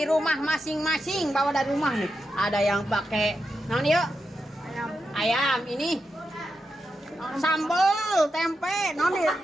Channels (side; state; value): both; normal; correlation 0.87